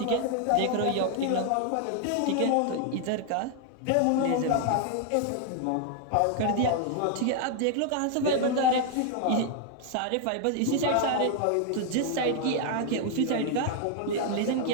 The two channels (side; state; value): both; different; correlation 0.00